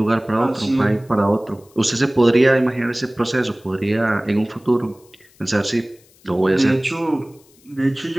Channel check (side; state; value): left; noise; hiss, 30 dB below the sound